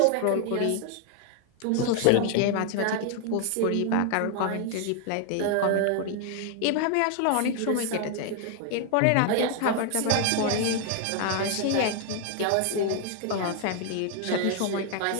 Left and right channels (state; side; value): different; both; correlation 0.00